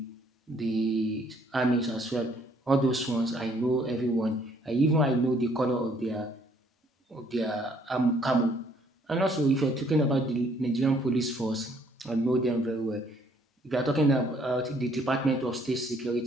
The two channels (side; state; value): both; normal; correlation 0.64